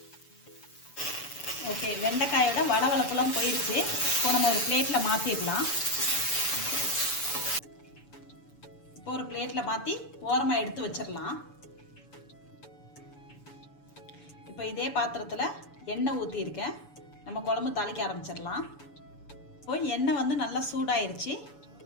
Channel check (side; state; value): right; late; 7.0 ms